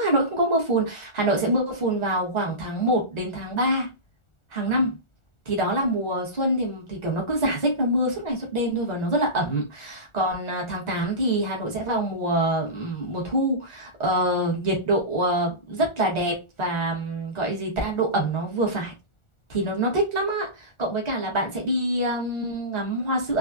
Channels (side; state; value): right; late; 1.4 ms